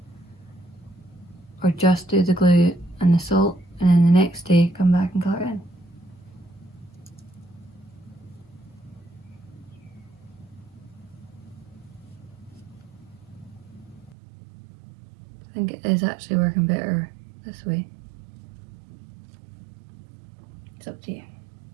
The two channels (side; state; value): left; drops out; at 14.2 s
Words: or just do the glue and the salt and then the next day come back and colour it in. I think it is actually working better this way. It's up to you.